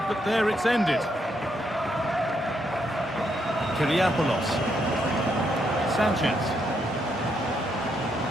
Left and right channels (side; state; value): both; normal; correlation 0.77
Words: but there it's ended. Kyriapoulos. Sanchez.